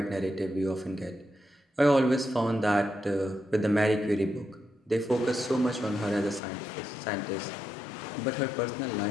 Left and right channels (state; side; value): drops out; right; at 6.4 s